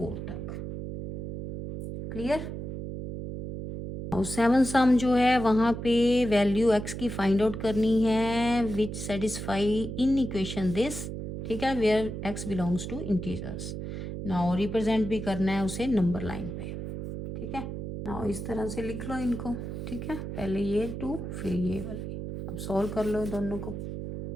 तक। क्लियर। और 7 सम जो है वहाँ पे वैल्यू x की फाइंड आउट करनी है which satisfy in equation this. ठीक है, where x belongs to integers. Now represent भी करना है उसे नंबर लाइन पे। ठीक है, नाउ इस तरह से लिख लो इनको। ठीक है, पहले ये 2 फिर ये वाले। अब सॉल्व कर लो दोनों को।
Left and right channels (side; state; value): right; noise; hum, 6 dB below the sound